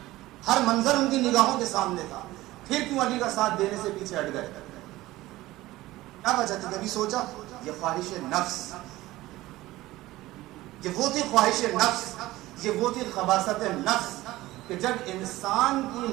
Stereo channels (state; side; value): quieter; left; 17.5 dB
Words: ہر منظر ان کی نگاہوں کے سامنے تھا. پھر کیوں علی کا ساتھ دینے سے پیچھے ہٹ گئے؟ کیا وجہ تھی؟ کبھی سوچا؟ یہ خواہش نفس، یہ وہ تھی خواہش نفس، یہ وہ تھی خباثت نفس کہ جب انسان